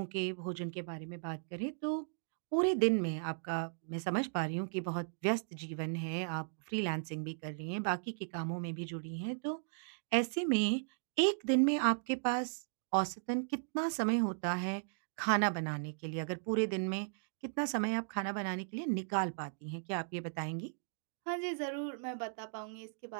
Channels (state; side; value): silent; left; digital silence